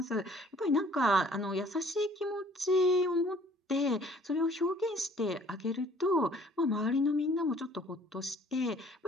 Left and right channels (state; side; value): normal; both; correlation 0.56